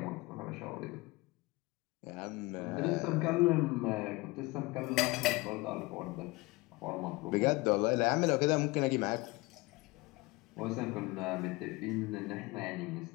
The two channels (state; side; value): quieter; right; 22.8 dB